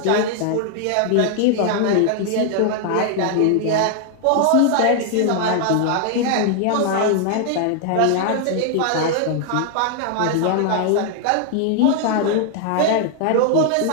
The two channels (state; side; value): different; both; correlation 0.00